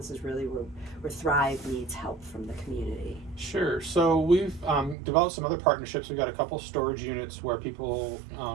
is really where Thrive needs help from the community? Sure. So we've developed some other partnerships. We've got a couple storage units where people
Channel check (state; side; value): drops out; left; at 5.0 s